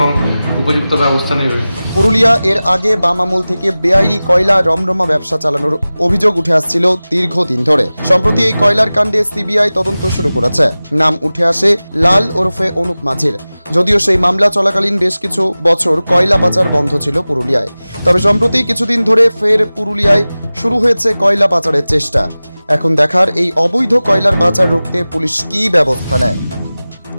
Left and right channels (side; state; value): both; inverted; correlation -0.97